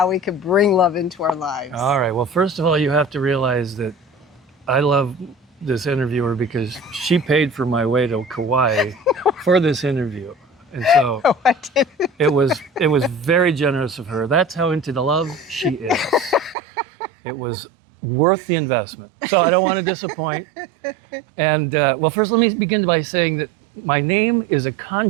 we can bring love into our lives. All right. Well, first of all, you have to realize that I love this interviewer because she paid for my way to Kauai for this interview. And so I didn't. it was very generous of her. That's how into the love she is. It was worth the investment. So I don't want to disappoint. And well, first let me begin by saying that my name is a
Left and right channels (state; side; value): drops out; left; at 16.6 s